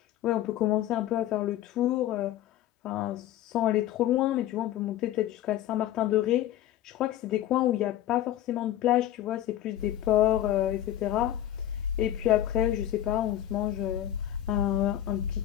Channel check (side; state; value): right; quieter; 12.6 dB